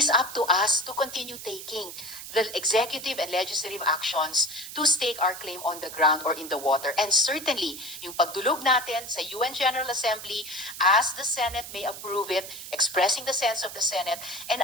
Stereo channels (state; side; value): noise; right; hiss, 11 dB below the sound